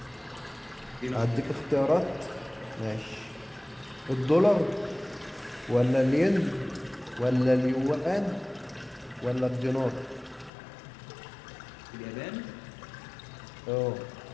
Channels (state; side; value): drops out; right; at 10.5 s